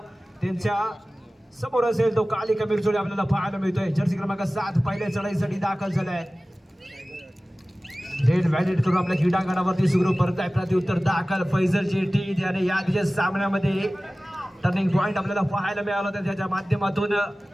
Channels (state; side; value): normal; both; correlation 0.97